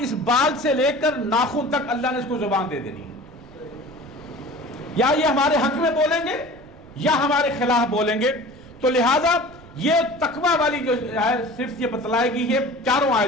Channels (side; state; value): right; noise; rumble, 22 dB below the sound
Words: اس بال سے لے کر ناخن تک اللہ نے اس کو زبان دے دینی ہے. یا یہ ہمارے حق میں بولیں گے یا ہمارے خلاف بولیں گے. تو لہٰذا یہ تقویٰ والی جو ہے صرف یہ بتلائے گی یہ 4